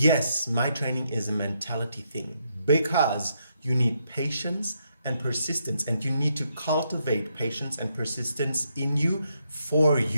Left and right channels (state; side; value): inverted; both; correlation -0.78